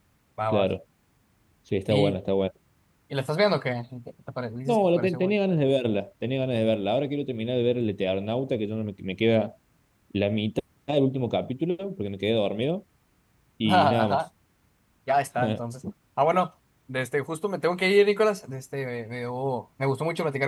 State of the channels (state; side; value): identical; both; correlation 1.00